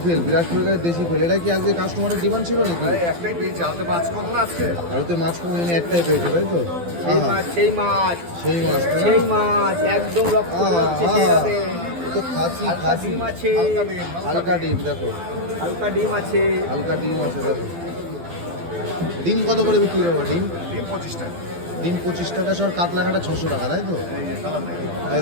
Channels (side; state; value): left; late; 12 ms